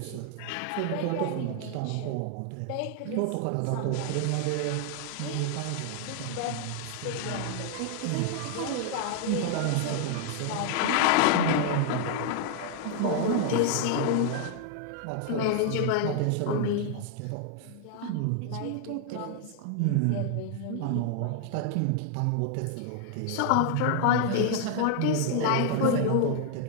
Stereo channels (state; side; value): different; both; correlation 0.00